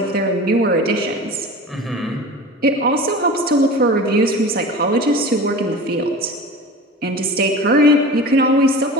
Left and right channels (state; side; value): normal; both; correlation 0.35